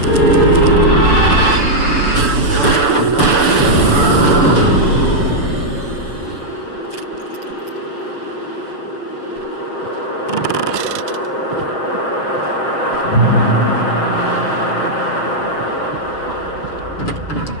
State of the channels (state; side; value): late; right; 7.0 ms